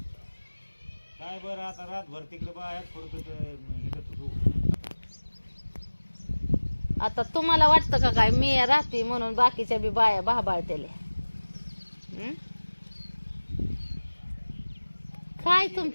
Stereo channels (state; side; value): inverted; both; correlation -1.00